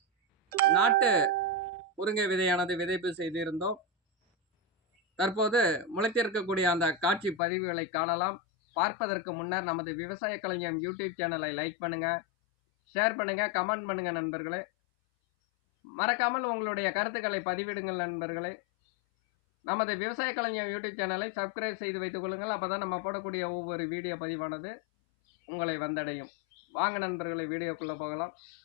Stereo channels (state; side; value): drops out; right; at 7.4 s